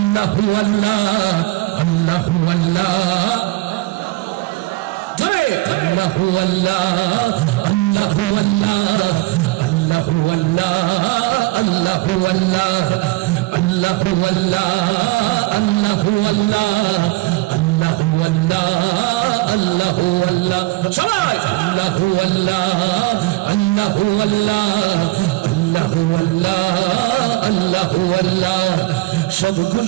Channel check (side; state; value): left; quieter; 20.7 dB